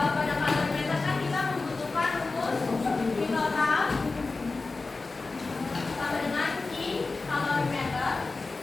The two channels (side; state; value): right; quieter; 3.7 dB